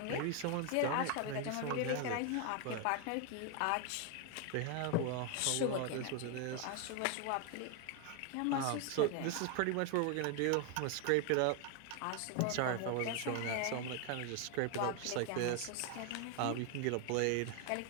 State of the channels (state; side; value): different; both; correlation 0.01